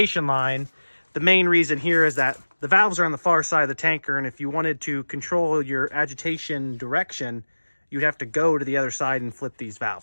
line. The main reason here is that the valves are on the far side of the tanker, and if you wanted to control your agitation direction, you'd have to go to the other side and flip these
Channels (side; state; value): both; inverted; correlation -1.00